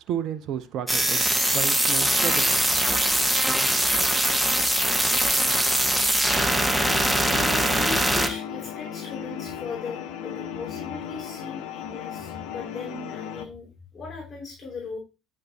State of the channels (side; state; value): both; normal; correlation 0.84